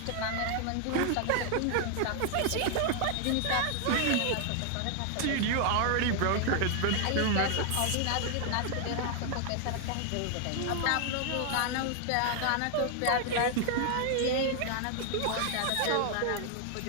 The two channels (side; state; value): both; different; correlation 0.00